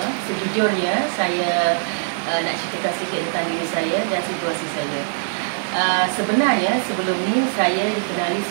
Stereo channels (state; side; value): silent; left; digital silence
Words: Sejujurnya saya nak ceritakan sedikit tentang diri saya dan situasi saya. Sebenarnya sebelum ni saya dikenali